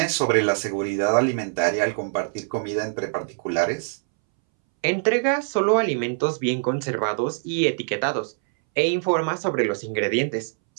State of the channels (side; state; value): left; silent; 63 dB below the other